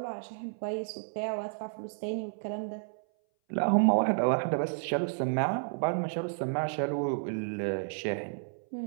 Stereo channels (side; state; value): left; silent; 57 dB below the other